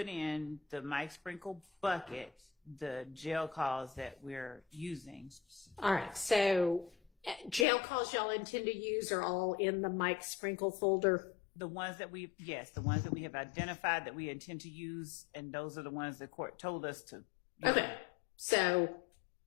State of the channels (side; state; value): right; drops out; at 7.7 s